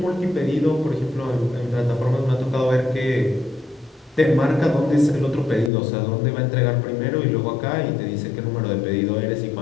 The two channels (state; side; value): drops out; right; at 5.7 s